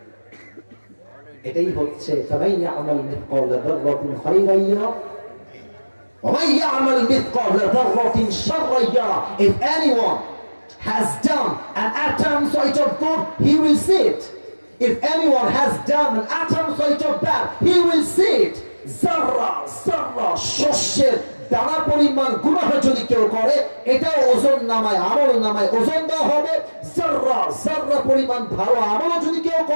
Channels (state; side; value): inverted; both; correlation -1.00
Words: এটাই হচ্ছে সবাই আমাল মিথকাল যারাতিন খায়রান ইয়ারা ওয়া মান ইয়ামাল মিথকাল যারাতিন শাররান ইয়ারা। If anyone has done an atom size of good, he will see it. If anyone has done an atom size of bad, he will see it. Zarra zarra শস্যের দানা পরিমাণ গুনাহ যদি কেউ করে, এটাও ওজন নামায়, আমল নামায় ওজন দেওয়া হবে। জাররা জাররা পরিমাণ ভালো আমল যদি কেউ